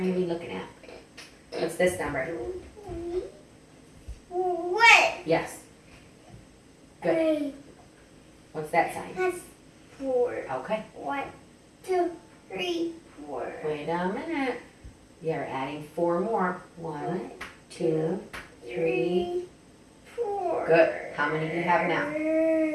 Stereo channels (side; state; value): both; identical; correlation 1.00